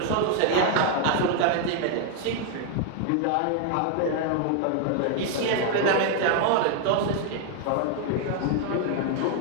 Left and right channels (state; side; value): different; both; correlation 0.00